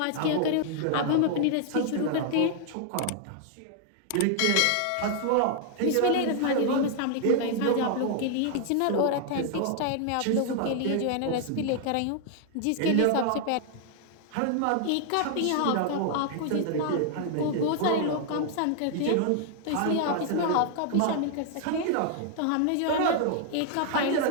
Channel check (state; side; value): different; both; correlation 0.00